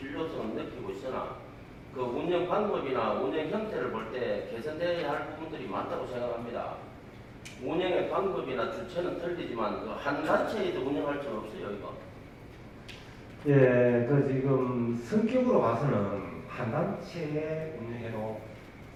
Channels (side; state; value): both; identical; correlation 1.00